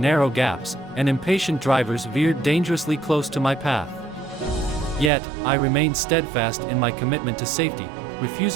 gaps, and impatient drivers veered dangerously close to my path. Yet, I remained steadfast in my commitment to safety,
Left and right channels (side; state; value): left; drops out; at 5.1 s